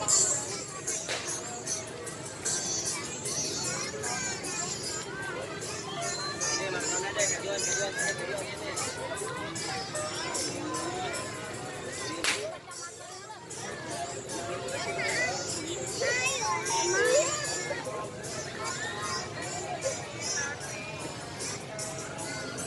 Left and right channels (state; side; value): identical; both; correlation 1.00